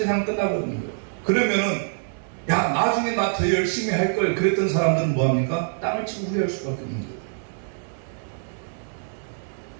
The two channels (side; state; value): left; silent; digital silence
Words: 끝나버리는 거예요. 그러면은 야, 나중에 나 더 열심히 할 걸 그랬던 사람들은 뭐합니까? 땅을 치고 후회할 수밖에 없는 거예요.